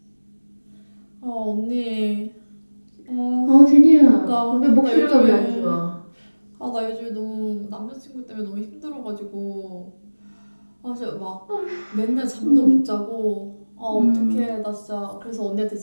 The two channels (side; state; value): both; inverted; correlation -1.00